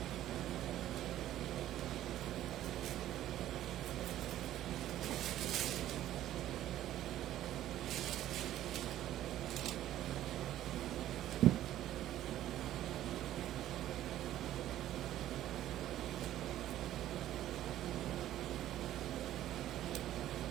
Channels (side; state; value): left; quieter; 12.9 dB